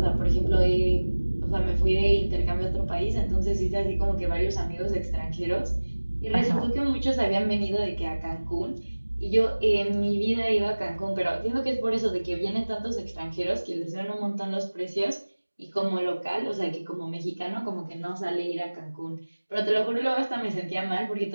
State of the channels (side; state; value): both; inverted; correlation -1.00